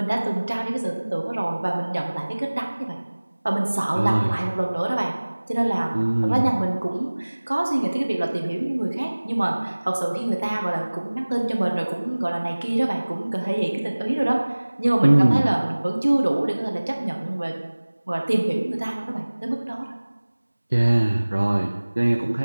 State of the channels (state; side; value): inverted; both; correlation -1.00